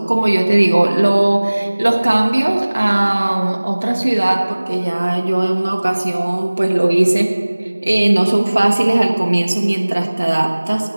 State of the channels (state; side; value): inverted; both; correlation -1.00